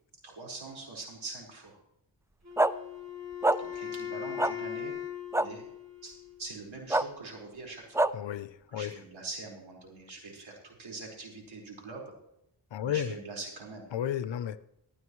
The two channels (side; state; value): both; normal; correlation 0.49